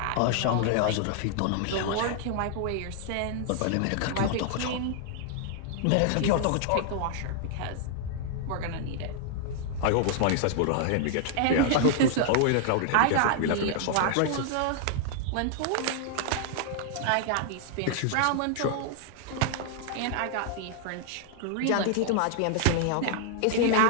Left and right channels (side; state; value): both; different; correlation 0.00